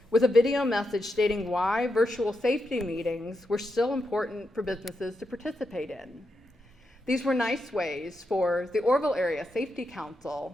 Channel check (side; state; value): both; normal; correlation 0.85